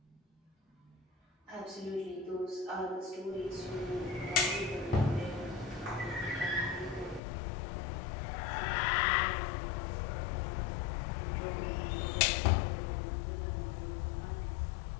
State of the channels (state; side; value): drops out; right; at 7.2 s